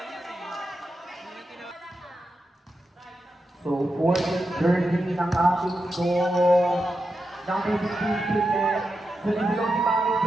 So, fourth jersey ng ating score. Ng PCC net. Sinisilong si Mami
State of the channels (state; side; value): normal; both; correlation 0.88